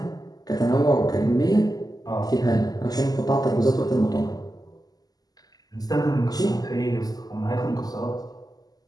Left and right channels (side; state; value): right; late; 0.18 ms